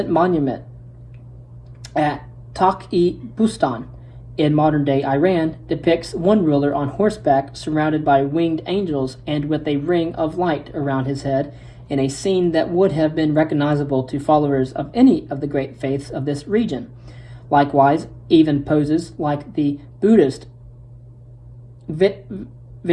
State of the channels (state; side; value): identical; both; correlation 1.00